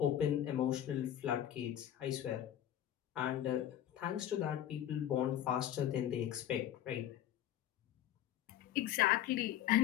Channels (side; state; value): right; quieter; 11.3 dB